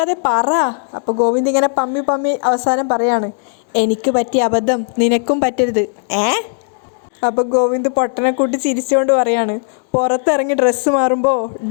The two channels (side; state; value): right; silent; digital silence